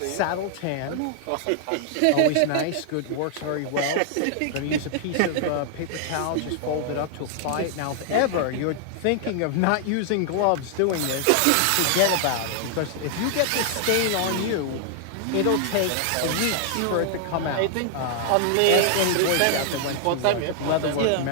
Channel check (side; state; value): both; different; correlation 0.00